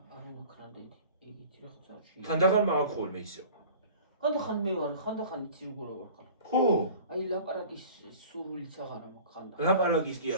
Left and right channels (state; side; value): inverted; both; correlation -0.43